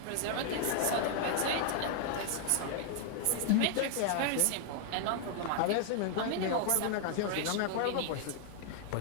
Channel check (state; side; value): different; both; correlation 0.00